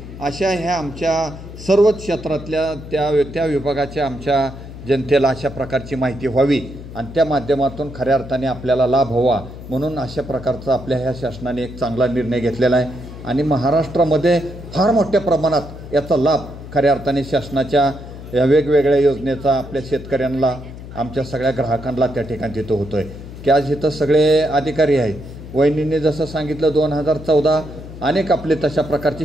अशा ह्या आमच्या सर्वच क्षेत्रातल्या त्या विभागाच्या आमच्या जनतेला अशा प्रकारची माहिती व्हावी आणि त्या माध्यमातून खऱ्या अर्थाने आपल्याला लाभ व्हावा म्हणून अशा प्रकारचा आपल्या ह्या शासनाने एक चांगला निर्णय घेतलेला आहे आणि महाराष्ट्रामध्ये फार मोठ्या प्रमाणात याचा लाभ खऱ्या अर्थाने शासनाच्या या वेगवेगळ्या योजनेचा आपल्या शेतकऱ्यांना, आमच्या सगळ्या ग्राहकांना त्या ठिकाणी तिथं होतो आहे की आज इथं सगळे अधिकारी आहेत. वहिनींनी जसं सांगितलं 2014 अनेक आपले तशा प्रकारची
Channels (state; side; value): noise; left; hum, 13 dB below the sound